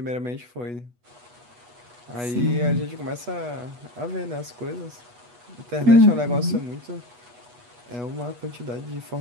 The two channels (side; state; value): left; late; 8.2 ms